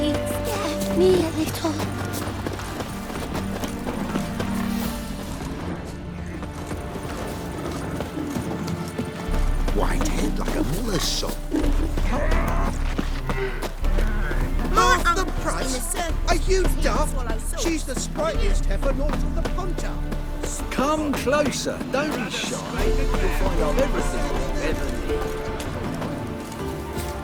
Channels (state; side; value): identical; both; correlation 1.00